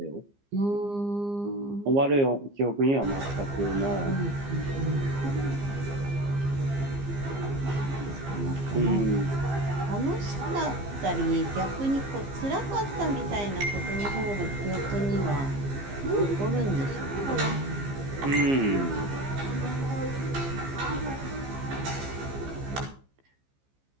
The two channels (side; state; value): left; late; 15 ms